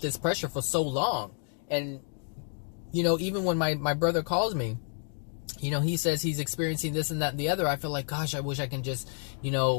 pressure for so long. And, even when my brother calls me, he says he's experiencing this and that and the other, I feel like, gosh, I wish I can just,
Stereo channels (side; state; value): right; silent; 58 dB below the other